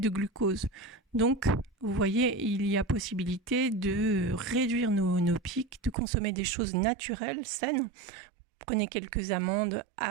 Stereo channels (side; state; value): left; drops out; at 6.0 s